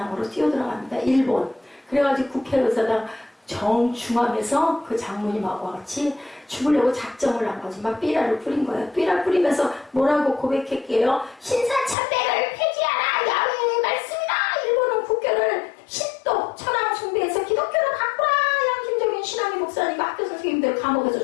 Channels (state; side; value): drops out; right; at 12.0 s